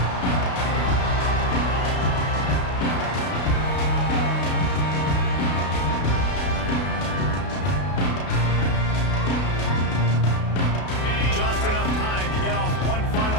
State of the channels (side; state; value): right; late; 33 ms